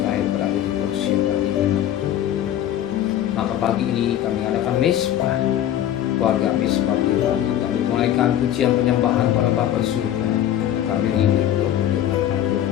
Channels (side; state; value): right; quieter; 11.5 dB